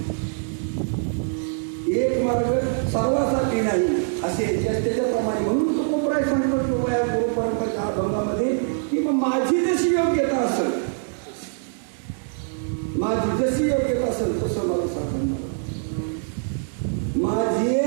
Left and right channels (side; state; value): left; silent; digital silence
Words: एक मार्ग सर्वासाठी नाही असे त्याच्याप्रमाणे. म्हणून तो कोपराय सांगतो किंवा या गुरु परंपरेच्या अभंगामध्ये की माझी जशी योग्यता असेल, माझी जशी योग्यता असेल तसं मला सापडणार.